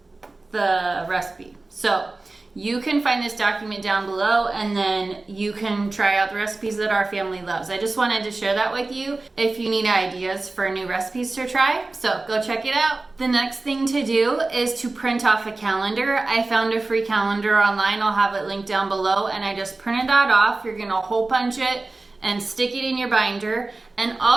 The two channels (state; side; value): quieter; left; 3.3 dB